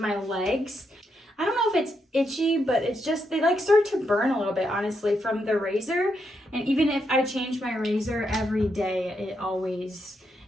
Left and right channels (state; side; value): normal; both; correlation 0.81